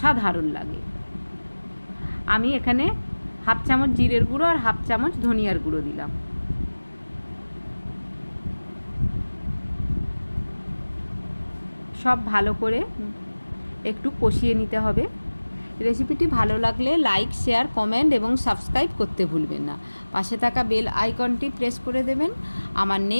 লাগে। আমি এখানে 1/2 চামচ জিরের গুঁড়ো আর 1/2 চামচ ধনিয়ার গুঁড়ো দিলাম। সব ভালো করে একটু কষিয়ে নিতে হবে। রেসিপিটি ভালো লাগলে লাইক, শেয়ার, কমেন্ট এবং সাবস্ক্রাইব করতে ভুলবেন না। পাশে থাকা বেল আইকনটি প্রেস করে দেবেন। আমার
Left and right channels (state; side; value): inverted; both; correlation -1.00